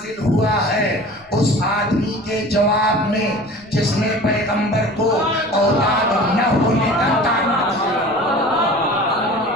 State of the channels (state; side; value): noise; left; rumble, 29 dB below the sound